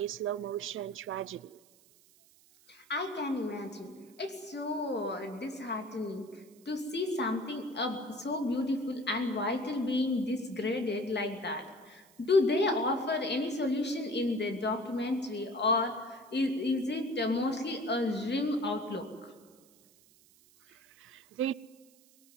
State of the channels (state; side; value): noise; right; hiss, 28 dB below the sound